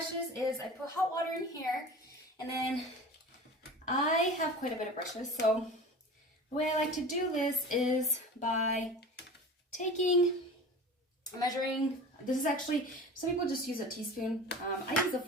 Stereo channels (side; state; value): both; normal; correlation 0.36